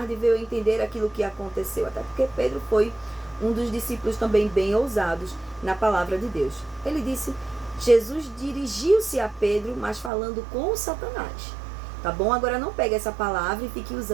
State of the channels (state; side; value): drops out; left; at 10.1 s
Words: veio entender aquilo que aconteceu. Até porque Pedro foi um dos discípulos também bem ousados na palavra de Deus. Ele disse, Jesus dirigiu-se a Pedro, mas falando com Satanás. Tá bom? Agora não pegue essa palavra e fique